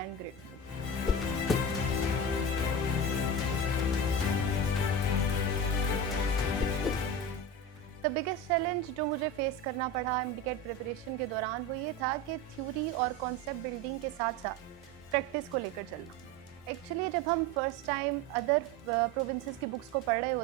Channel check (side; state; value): both; normal; correlation 0.25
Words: and grateful. The biggest challenge जो मुझे फेस करना पड़ा MDCAT प्रिपरेशन के दौरान वो ये था कि थ्योरी और कॉन्सेप्ट बिल्डिंग के साथ साथ प्रैक्टिस को लेकर चलना. एक्चुअली जब हम फर्स्ट टाइम अदर प्रोविंसेस की बुक्स को पढ़ रहे